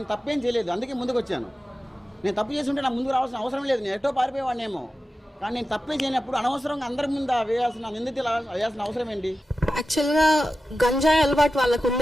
తప్పేం చేయలేదు, అందుకే ముందుకు వచ్చాను. నేను తప్పు చేసి ఉంటే నాకు ముందుకు రావాల్సిన అవసరం లేదు, నేను ఎటో పారిపోయేవాడినేమో. కానీ నేను తప్పే చేయనప్పుడు అనవసరంగా అందరి ముందు వేయాల్సిన నిందితులు వేయాల్సిన అవసరం ఏంటి? యాక్చువల్గా గంజాయి అలవాటు వాళ్ళకు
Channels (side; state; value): both; normal; correlation 0.93